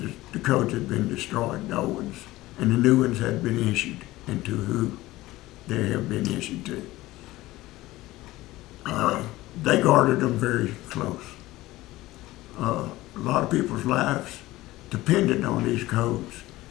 the codes had been destroyed, the old ones, and the new ones had been issued, and to who they have been issued to. They guarded them very close. A lot of people's lives depended on these codes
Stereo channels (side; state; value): right; quieter; 17.9 dB